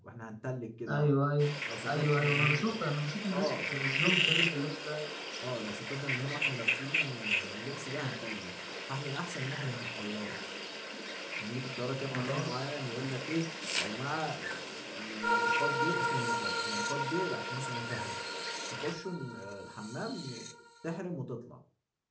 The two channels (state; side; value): identical; both; correlation 1.00